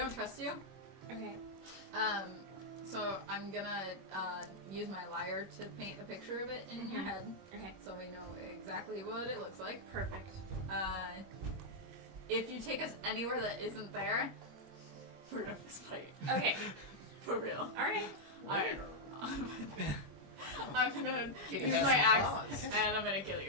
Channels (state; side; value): late; left; 21 ms